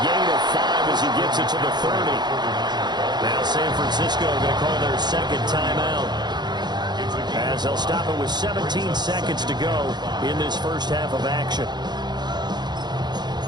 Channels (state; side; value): late; left; 0.21 ms